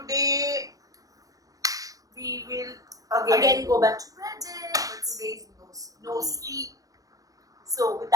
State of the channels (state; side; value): late; left; 0.17 ms